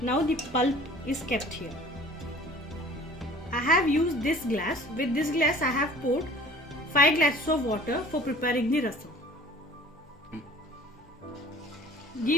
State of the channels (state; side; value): normal; both; correlation 0.48